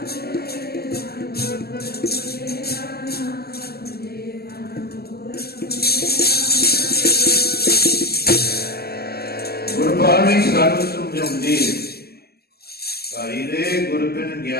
गुरबाणी सानू समझाउंदी है, भाई रे गुर बिन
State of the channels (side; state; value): right; late; 0.46 ms